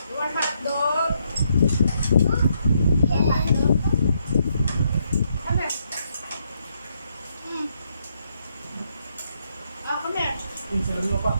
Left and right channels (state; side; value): inverted; both; correlation -0.76